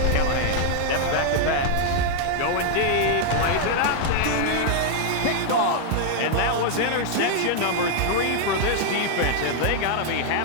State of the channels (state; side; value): different; both; correlation 0.00